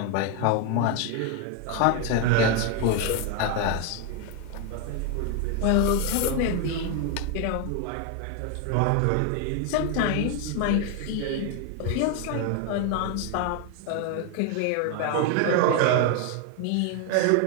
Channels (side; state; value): both; different; correlation 0.01